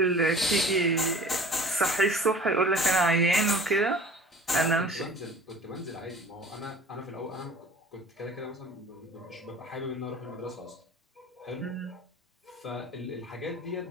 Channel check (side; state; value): both; normal; correlation 0.45